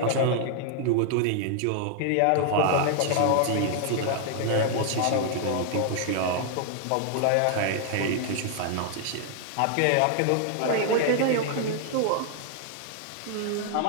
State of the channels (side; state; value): both; different; correlation 0.00